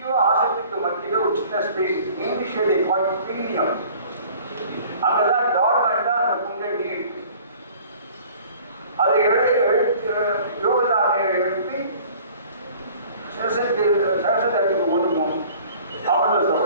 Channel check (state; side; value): inverted; both; correlation -0.49